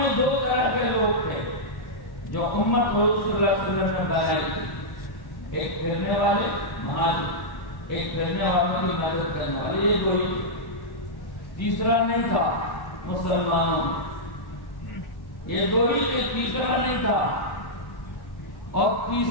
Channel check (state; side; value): late; right; 1.1 ms